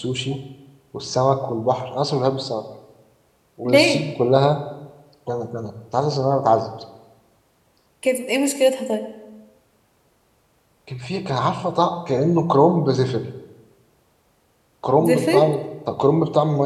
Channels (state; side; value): identical; both; correlation 1.00